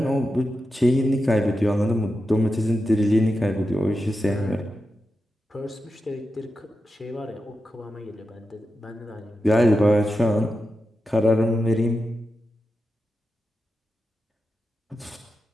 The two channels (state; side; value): normal; both; correlation 0.90